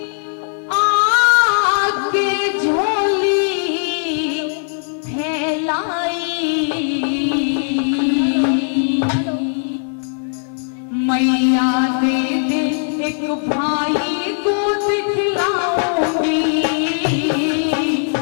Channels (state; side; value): silent; right; 65 dB below the other